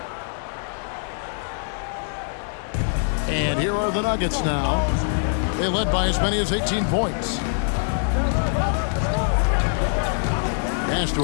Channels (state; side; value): silent; right; digital silence